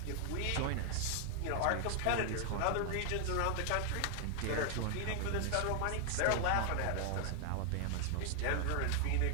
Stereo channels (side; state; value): both; different; correlation 0.00